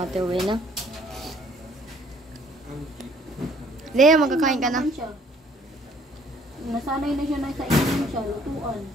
uwi na. Lea, magkakain ka na. Nasanay na siya na sa inom siya, lutuan.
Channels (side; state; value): both; normal; correlation 0.60